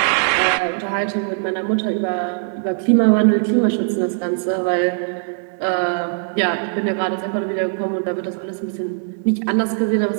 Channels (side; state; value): left; silent; digital silence